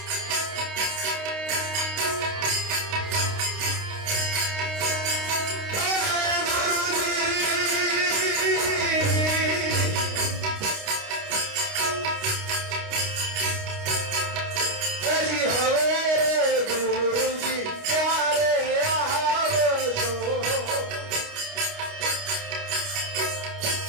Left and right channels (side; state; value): left; late; 29 ms